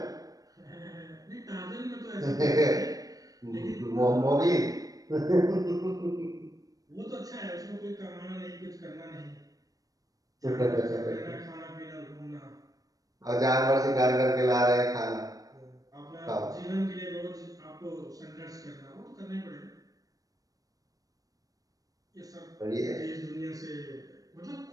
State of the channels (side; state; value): left; late; 0.18 ms